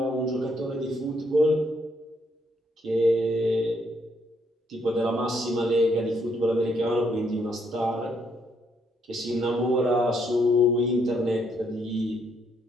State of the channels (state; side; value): normal; both; correlation 0.72